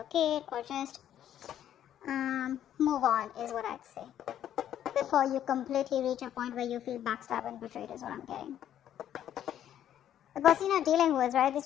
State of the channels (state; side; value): quieter; right; 10.8 dB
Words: or just move on is what I'd say. Before you completely reach a point where you feel backstabbed and betrayed is what I'm getting. The person you're dealing with, right?